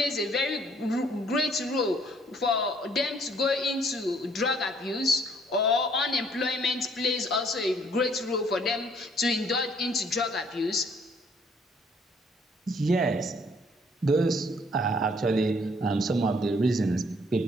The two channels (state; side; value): normal; both; correlation 0.63